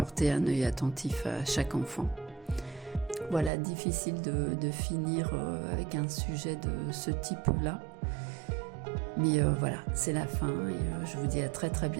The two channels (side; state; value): left; drops out; at 3.5 s